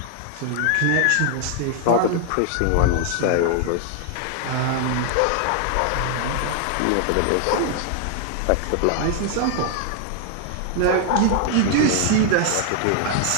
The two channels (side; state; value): both; different; correlation 0.00